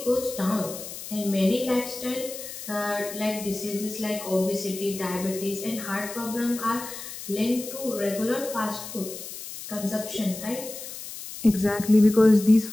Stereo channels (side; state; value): left; noise; hiss, 11 dB below the sound